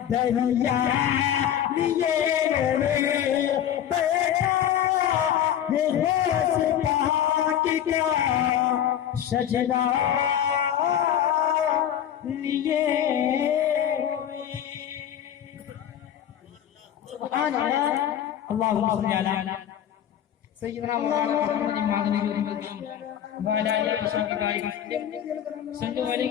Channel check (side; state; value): right; quieter; 10.3 dB